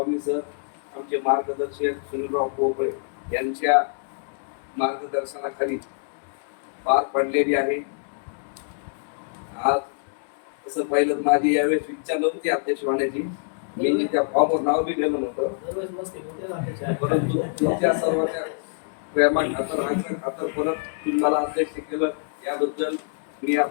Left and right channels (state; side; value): silent; right; digital silence